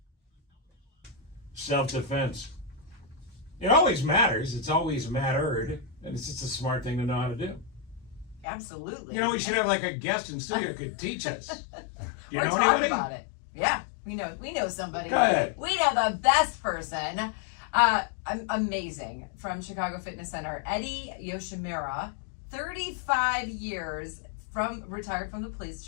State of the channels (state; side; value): drops out; right; at 8.5 s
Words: Self-defense. It always matters. It's always mattered. And it's just a smart thing to know how to do. Absolutely. You know, we should have like a guest in studio who could teach us. Do you We're know talking anybody? about it. Yeah, we know somebody. Go ahead. We know the best person. Amazing. From Chicago Fitness Center, Eddie Yoshimura, 35 years retired from the